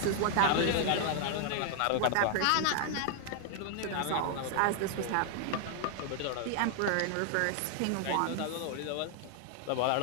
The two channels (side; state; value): both; different; correlation 0.00